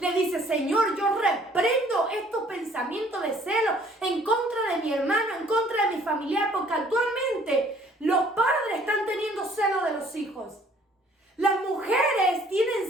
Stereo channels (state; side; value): normal; both; correlation 0.58